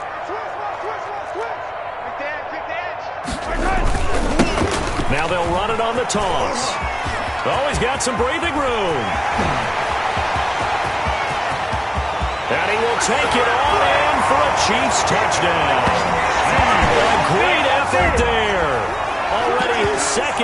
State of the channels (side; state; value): both; identical; correlation 1.00